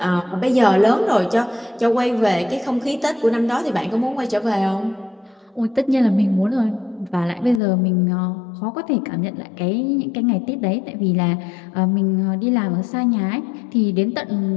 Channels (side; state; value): right; drops out; at 7.6 s